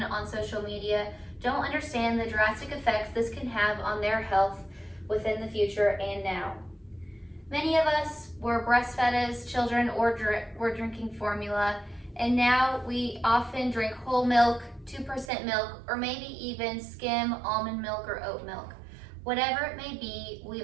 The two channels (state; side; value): drops out; left; at 15.3 s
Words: on social media don't understand the drastic effects this can have on their health within the future and now. Many of us were breastfed as children or were drinking formula, and now we often drink whole milk, 2% milk, or maybe even skim almond milk or oat milk. Whatever it may be, we